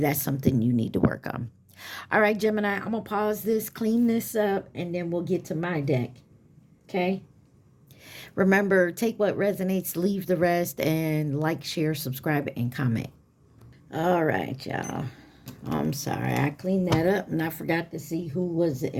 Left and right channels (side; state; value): both; identical; correlation 1.00